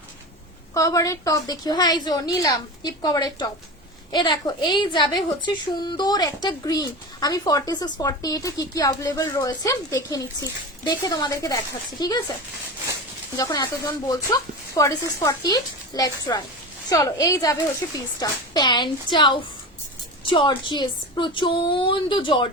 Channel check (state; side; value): normal; both; correlation 0.26